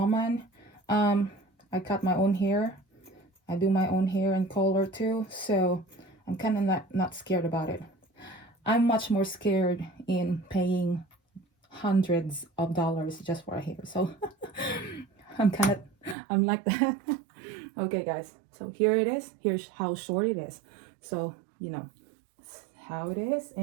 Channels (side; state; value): left; drops out; at 16.2 s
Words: I cut my own hair. I do my own hair and color too, so I'm kind of not scared about it. I'm much more scared in paying hundreds of dollars just for a hair. So I'm like that. Okay, guys. So here it is. Here's how short it is. So, you know, how it is,